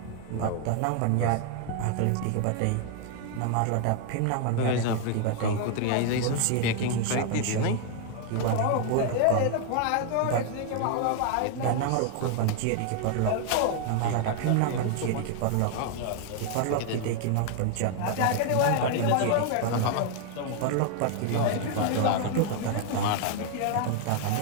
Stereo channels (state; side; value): different; both; correlation 0.00